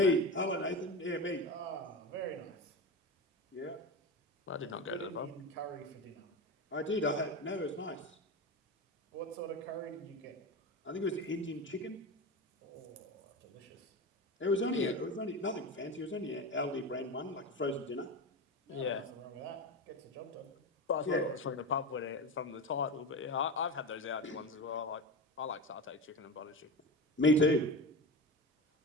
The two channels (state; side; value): normal; both; correlation 0.24